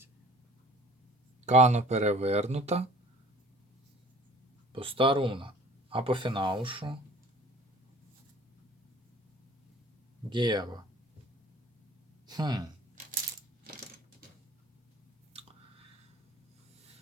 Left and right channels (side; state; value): both; normal; correlation 0.48